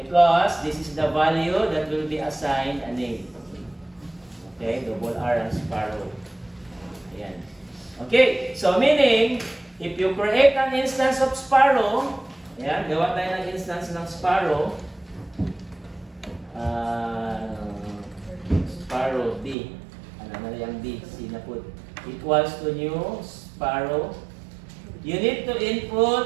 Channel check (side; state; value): left; drops out; at 19.6 s